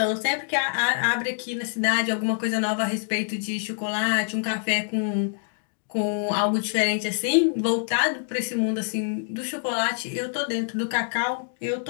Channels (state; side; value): silent; right; digital silence